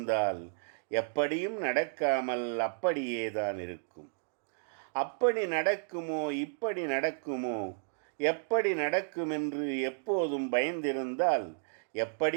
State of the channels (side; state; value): left; silent; digital silence